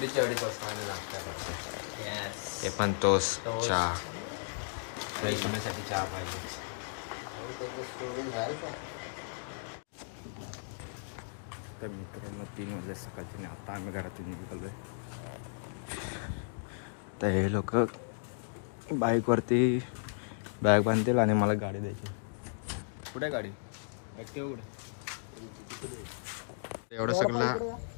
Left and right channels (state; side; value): silent; right; digital silence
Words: 2:30 वाजता आम्ही नाश्ता करतो. ते Yes. पण तोच चहा. फ्रेश होण्यासाठी चहा पाहिजे. तर मित्रांनो 3 वाजले सकाळचे आणि आता आम्ही घरातून निघालो आहे. तर हे लोक बाईकवरती बॅग बांधतील आणि मला गाडी द्यायची. कुठे गाडी? ॲक्टिवा कुठे? एवढं सगळं